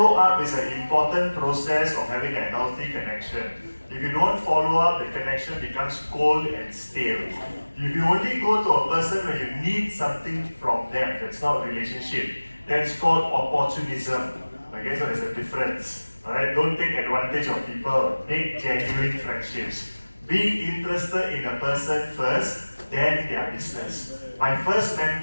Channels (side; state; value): both; inverted; correlation -1.00